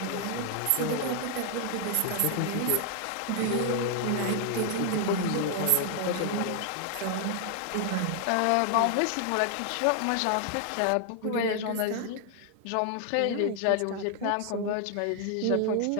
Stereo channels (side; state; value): both; different; correlation 0.00